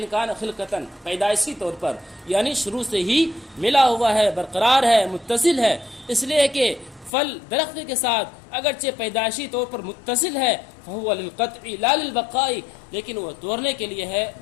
كَانَ خِلْقَةً پیدائشی طور پر یعنی شروع سے ہی ملا ہوا ہے، برقرار ہے، متصل ہے. اس لیے کہ پھل درخت کے ساتھ اگرچہ پیدائشی طور پر متصل ہے، فَهُوَ لِلْقَطْعِ لَا لِلْبَقَاءِ، لیکن وہ توڑنے کے لیے ہے،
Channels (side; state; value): right; drops out; at 7.1 s